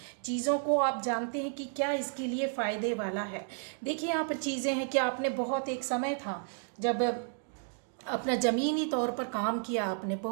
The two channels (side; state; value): left; silent; 56 dB below the other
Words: चीज़ों को आप जानते हैं कि क्या इसके लिए फ़ायदे वाला है। देखिए यहाँ पर चीज़ें हैं कि आपने बहुत, एक समय था जब अपना ज़मीनी तौर पर काम किया, आपने